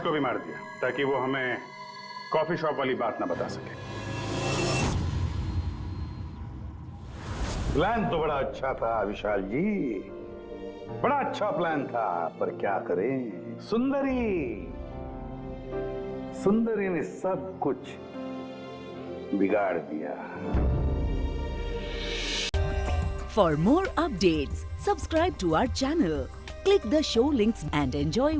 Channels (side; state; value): both; identical; correlation 1.00